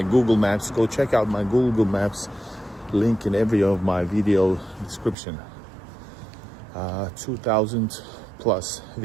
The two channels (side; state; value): left; drops out; at 5.2 s